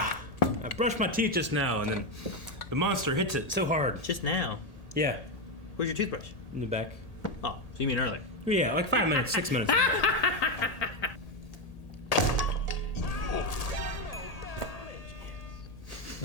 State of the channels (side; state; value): right; late; 1.8 ms